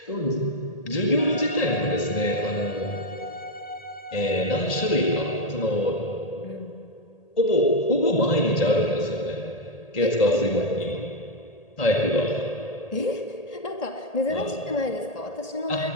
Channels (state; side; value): late; right; 1.8 ms